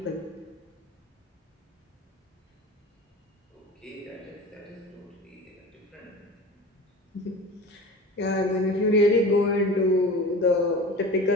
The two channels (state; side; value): normal; both; correlation 0.35